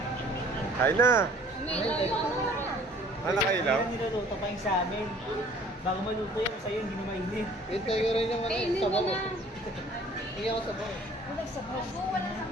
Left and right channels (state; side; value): normal; both; correlation 0.53